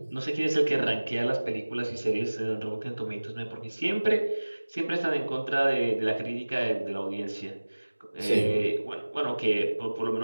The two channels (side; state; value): both; inverted; correlation -1.00